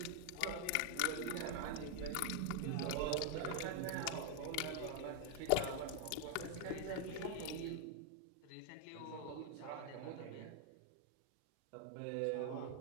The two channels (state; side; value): different; both; correlation 0.00